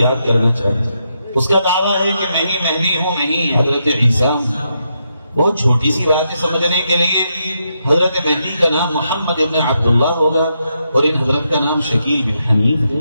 کرنا چاہیے. اس کا دعویٰ ہے کہ میں ہی مہدی ہوں، میں ہی حضرت عیسیٰ ہوں. بہت چھوٹی سی بات ہے سمجھنے کے لیے. حضرت مہدی کا نام محمد ابن عبداللہ ہوگا اور ان حضرت کا نام شکیل بن حنیف ہے.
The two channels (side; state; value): both; inverted; correlation -0.82